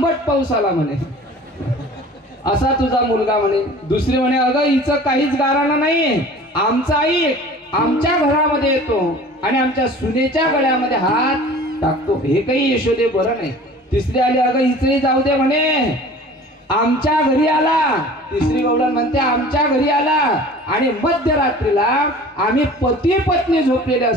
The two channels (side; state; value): both; normal; correlation 0.44